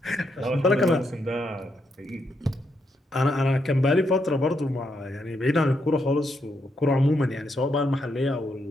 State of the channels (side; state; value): both; normal; correlation 0.79